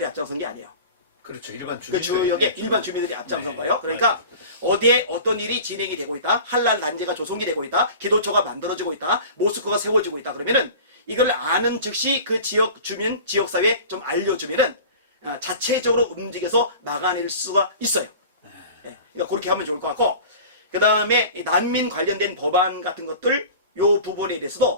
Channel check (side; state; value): both; inverted; correlation -0.39